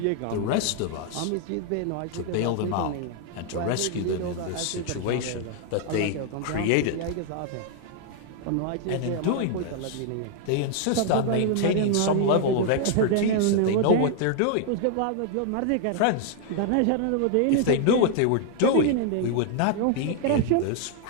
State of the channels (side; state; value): both; different; correlation 0.00